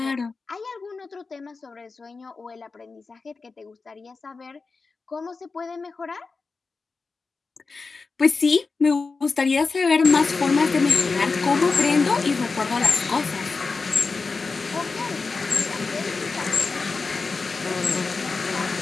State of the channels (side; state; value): right; quieter; 4.3 dB